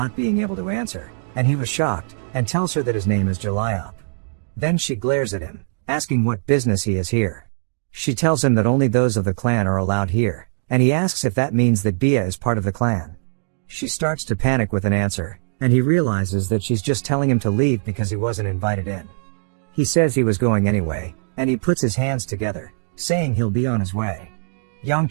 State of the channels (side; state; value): left; silent; digital silence